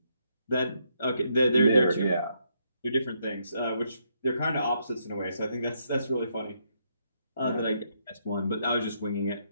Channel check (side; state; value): both; inverted; correlation -0.75